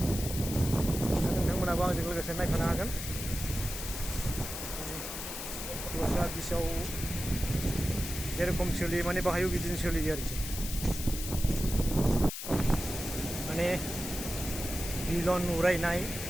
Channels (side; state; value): left; noise; hiss, 7 dB below the sound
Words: नोंथांमोनाबो आंजों लोगोसे नायफानो हागोन। दस्रा बिचआव जेरखम सोलियो माने बाहायबो बिदिनो सोलियो आरोखि। माने बिलन उरायनाय,